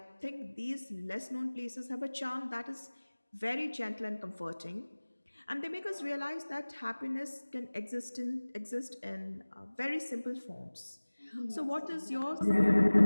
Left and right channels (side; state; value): both; inverted; correlation -1.00